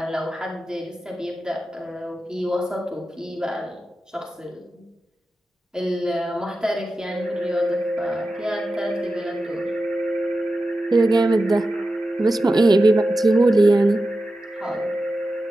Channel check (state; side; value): normal; both; correlation 0.92